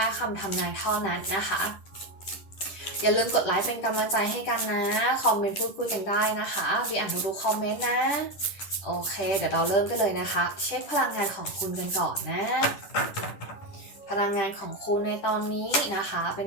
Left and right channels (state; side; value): late; right; 10 ms